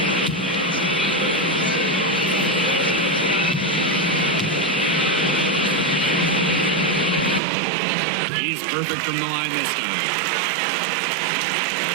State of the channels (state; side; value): drops out; left; at 7.4 s